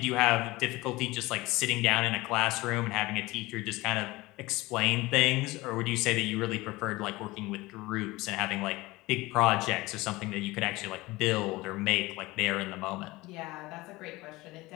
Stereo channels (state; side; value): quieter; right; 20.6 dB